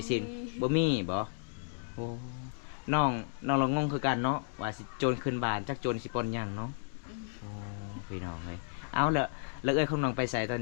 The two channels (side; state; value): right; silent; digital silence